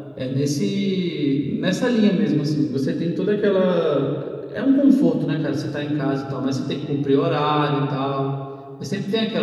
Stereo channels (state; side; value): identical; both; correlation 1.00